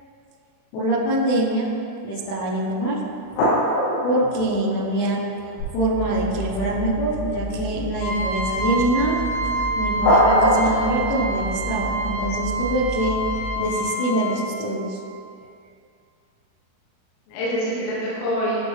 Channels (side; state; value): right; late; 37 ms